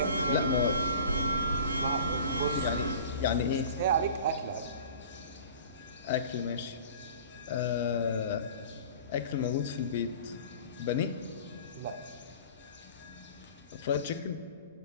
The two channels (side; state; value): both; inverted; correlation -0.42